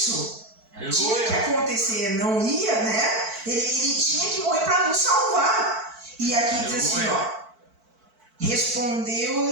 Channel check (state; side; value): late; left; 4.5 ms